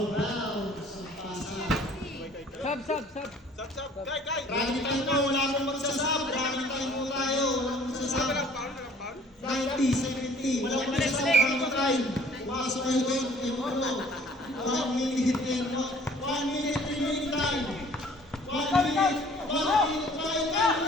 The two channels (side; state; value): both; normal; correlation 0.53